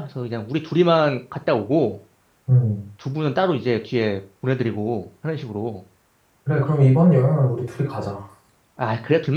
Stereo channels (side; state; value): both; identical; correlation 1.00